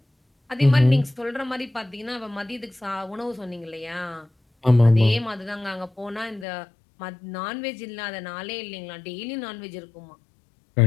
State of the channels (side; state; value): right; drops out; at 6.5 s